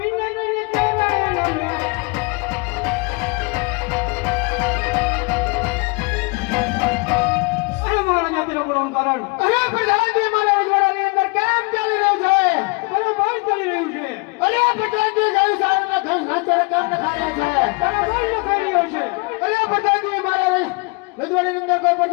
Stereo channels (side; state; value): right; quieter; 28.7 dB